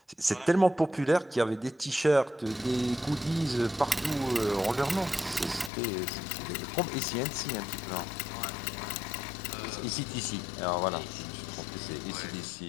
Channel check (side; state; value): right; drops out; at 5.7 s